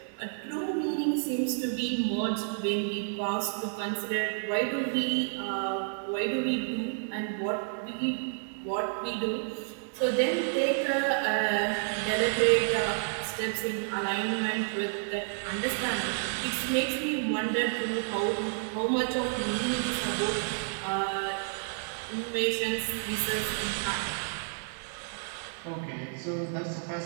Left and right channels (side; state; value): left; silent; digital silence